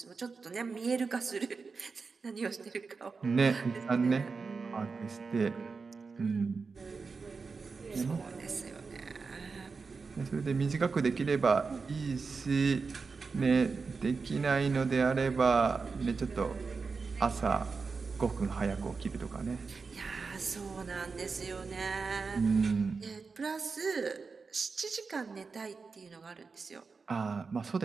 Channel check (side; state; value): left; quieter; 4.7 dB